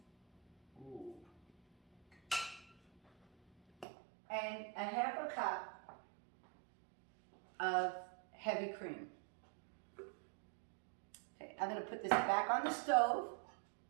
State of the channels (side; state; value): left; drops out; at 3.9 s